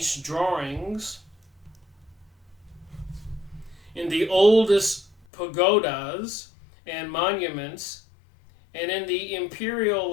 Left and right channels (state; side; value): drops out; right; at 5.2 s